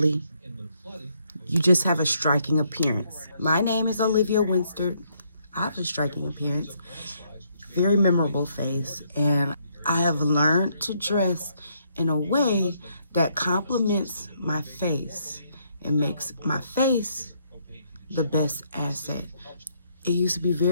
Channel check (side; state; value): both; inverted; correlation -0.72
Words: You just have a striking appearance. My name is Olivia Winster. I have a striking appearance, very memorable face, and I have learned to dress in a way that complements my face and makes my face the best asset. It used to be